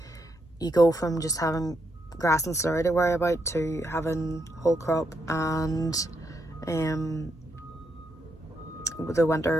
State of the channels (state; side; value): normal; both; correlation 0.80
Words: You go from just having grass and slurry to worry about to having whole crop and the